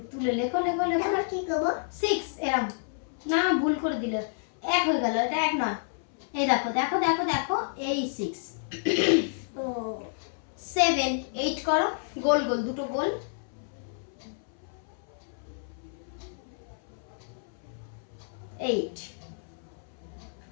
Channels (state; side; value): silent; right; 58 dB below the other